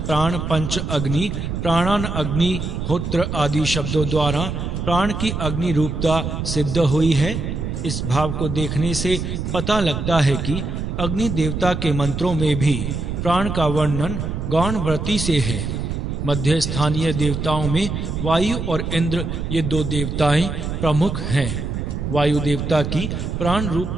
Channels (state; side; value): noise; right; rumble, 3 dB below the sound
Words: पंच अग्नि, प्राणान अग्नि, होत्र आदि शब्दों द्वारा प्राण की अग्नि रूपता सिद्ध हुई है। इस भाव को देखने से पता लगता है कि अग्नि देवता के मंत्रों में भी प्राण का वर्णन गौण व्रति से है। मध्य स्थानीय देवताओं में वायु और इंद्र ये दो देवताएं प्रमुख हैं। वायु देवता की प्राण